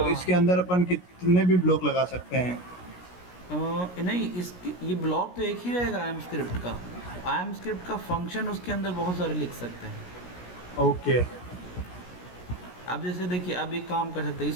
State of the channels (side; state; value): right; late; 17 ms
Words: इसके अंदर अपन कितने भी ब्लॉक लगा सकते हैं? नहीं, इसकी ये ब्लॉक तो एक ही रहेगा आई एम स्क्रिप्ट का। आई एम स्क्रिप्ट का फंक्शन उसके अंदर बहुत सारे लिख सकते हैं। ओके। अब जैसे देखिए, अब एक काम कर सकते हैं,